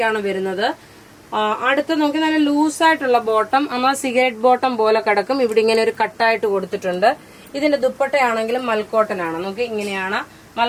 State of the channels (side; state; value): both; identical; correlation 1.00